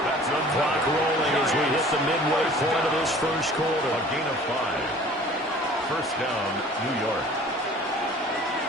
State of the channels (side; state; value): both; normal; correlation 0.48